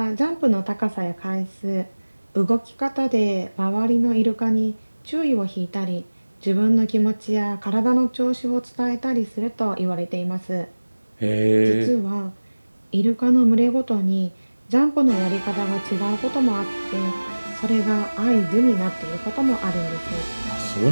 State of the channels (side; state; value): both; inverted; correlation -1.00